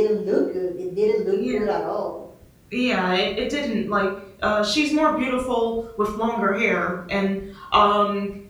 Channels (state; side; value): identical; both; correlation 1.00